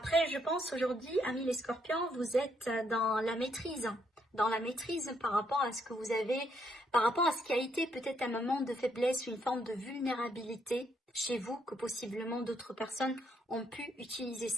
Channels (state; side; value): normal; both; correlation 0.74